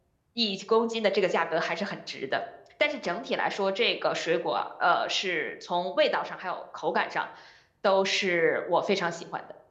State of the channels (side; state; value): both; identical; correlation 1.00